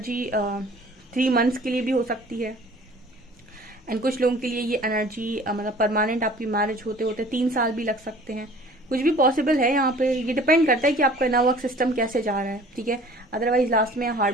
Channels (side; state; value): both; normal; correlation 0.49